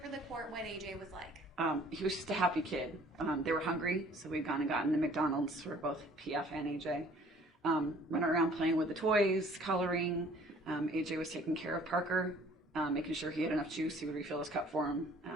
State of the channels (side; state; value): both; normal; correlation 0.55